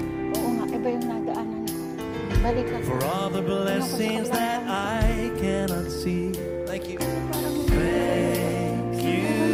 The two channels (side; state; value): both; identical; correlation 1.00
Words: Oo nga, iba yung nadaanan ko. Balik ako. For all the blessings that I cannot see. Thank you. Thank